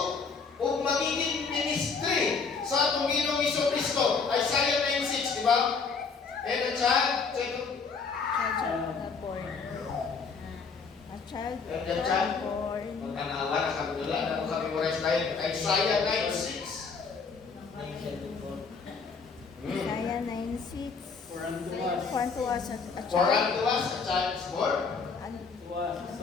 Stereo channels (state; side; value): quieter; right; 5.1 dB